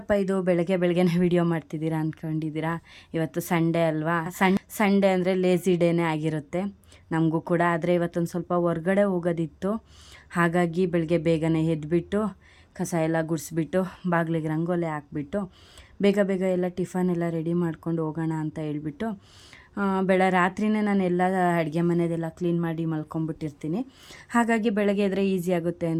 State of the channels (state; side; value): identical; both; correlation 1.00